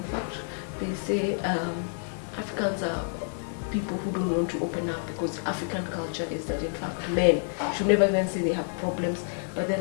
fact, they say Africans are people who don't want to open up because African culture is that in fact men should never even say they have problems, but they're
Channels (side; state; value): right; silent; digital silence